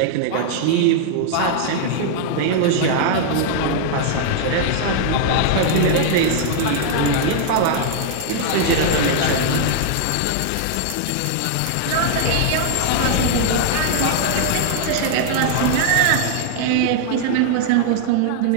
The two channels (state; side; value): different; both; correlation -0.01